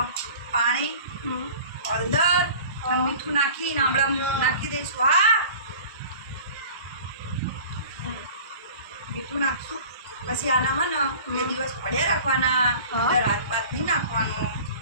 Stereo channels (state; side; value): inverted; both; correlation -0.42